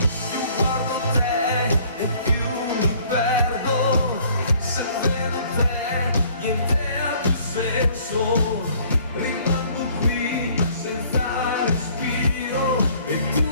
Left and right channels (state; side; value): inverted; both; correlation -0.57